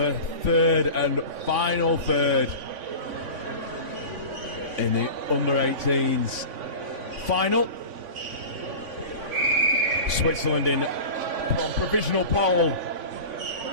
third and final third in the under-18s final. Switzerland in provisional pole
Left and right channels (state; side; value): late; left; 3.5 ms